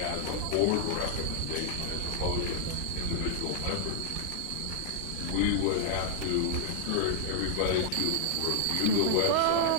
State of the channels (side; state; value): both; different; correlation -0.01